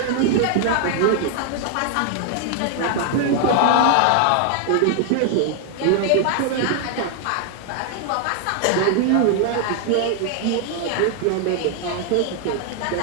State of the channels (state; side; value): different; both; correlation 0.00